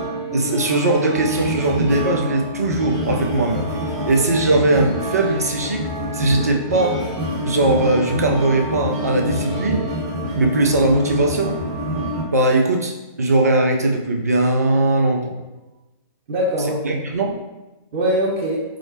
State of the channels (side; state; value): both; inverted; correlation -0.51